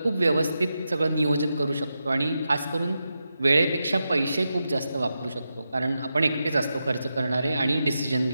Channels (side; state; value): both; inverted; correlation -0.88